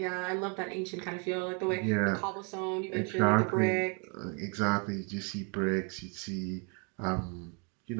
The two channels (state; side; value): quieter; left; 35.9 dB